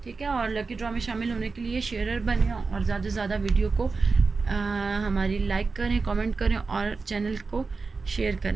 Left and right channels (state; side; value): quieter; left; 4.3 dB